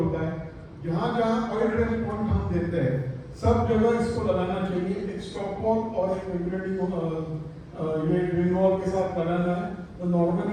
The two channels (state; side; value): identical; both; correlation 1.00